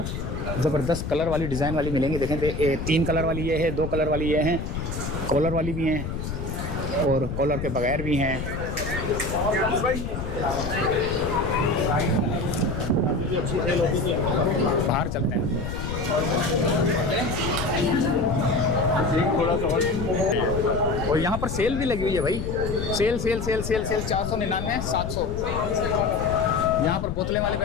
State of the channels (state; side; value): noise; left; rumble, 5 dB below the sound